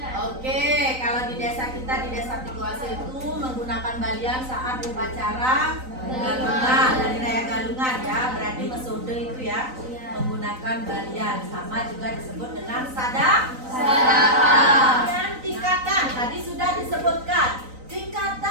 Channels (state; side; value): late; left; 3.9 ms